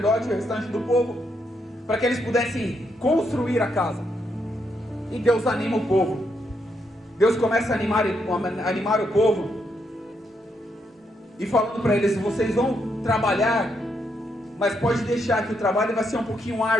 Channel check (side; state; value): both; normal; correlation 0.78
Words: e o restante do povo, para que eles pudessem construir a casa. E Deus anima o povo. Deus começa a animar o povo e falando para eles: vocês vão trabalhar, mas pode deixar que o trabalho vai ser um pouquinho